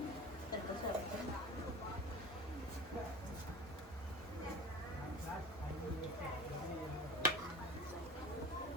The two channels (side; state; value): both; normal; correlation 0.35